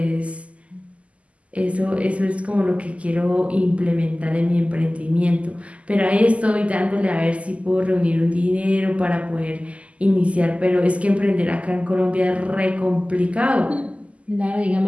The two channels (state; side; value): late; left; 0.063 ms